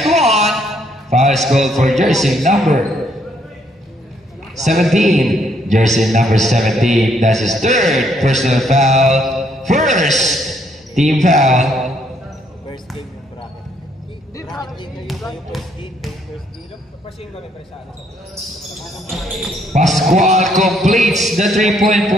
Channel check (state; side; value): normal; both; correlation 0.70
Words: 1. Foul called for jersey number 17. Jersey number 17. That's his third personal foul. First team foul. Pascual completes the 3-point